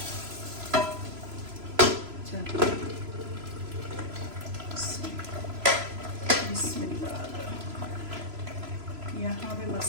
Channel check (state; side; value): late; left; 3.0 ms